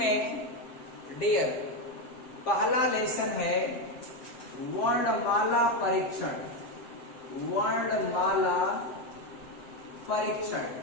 डियर पहला लेसन है वर्णमाला परीक्षण। वर्णमाला परीक्षण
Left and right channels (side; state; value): right; late; 7.7 ms